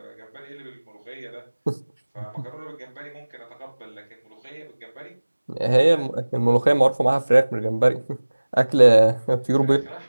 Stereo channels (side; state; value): both; inverted; correlation -1.00